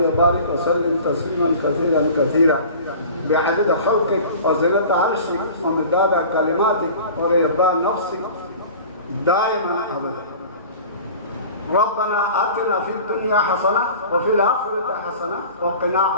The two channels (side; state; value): both; inverted; correlation -0.41